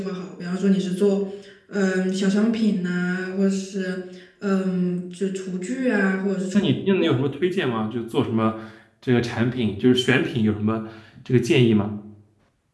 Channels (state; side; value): identical; both; correlation 1.00